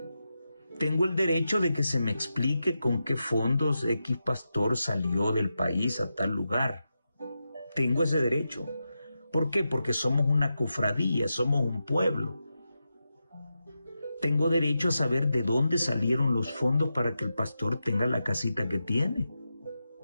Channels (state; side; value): inverted; both; correlation -0.88